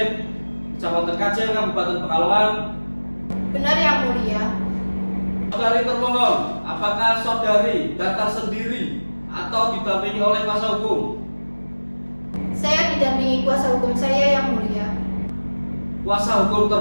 Kecamatan Kajen, Kabupaten Pekalongan? Benar yang mulia. Saudari termohon, apakah saudari datang sendiri atau didampingi oleh kuasa hukum? Saya didampingi kuasa hukum saya yang mulia. Kuasa hukum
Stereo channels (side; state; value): both; inverted; correlation -1.00